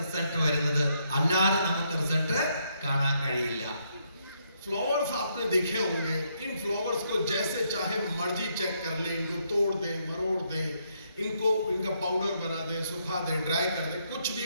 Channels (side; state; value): both; inverted; correlation -0.75